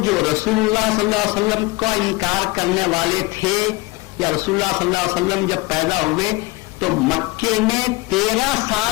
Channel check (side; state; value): right; quieter; 22.4 dB